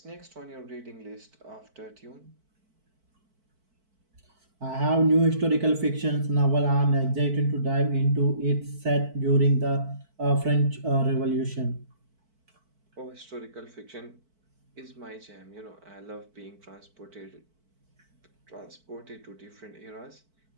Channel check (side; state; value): left; late; 4.5 ms